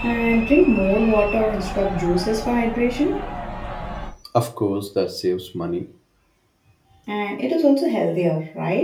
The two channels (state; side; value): identical; both; correlation 1.00